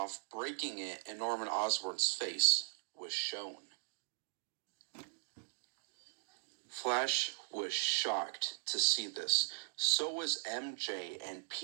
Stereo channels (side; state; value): left; silent; digital silence